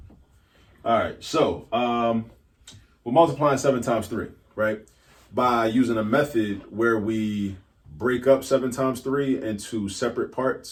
All right, so we're multiplying 7 times 3, right? By using a method where we break up 7 times 3 into separate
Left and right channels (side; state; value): both; identical; correlation 1.00